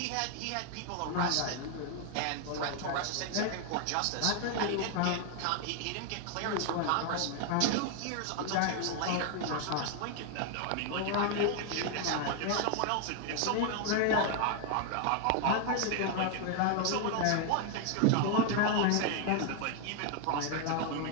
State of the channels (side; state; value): both; different; correlation 0.01